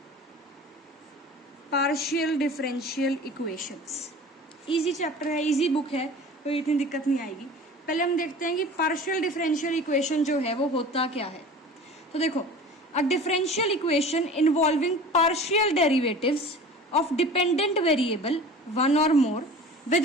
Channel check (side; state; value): both; normal; correlation 0.40